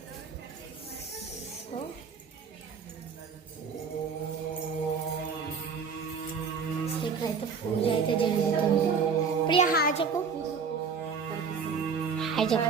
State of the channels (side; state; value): left; quieter; 5.9 dB